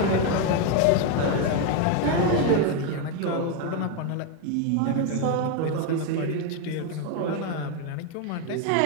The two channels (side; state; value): both; different; correlation 0.02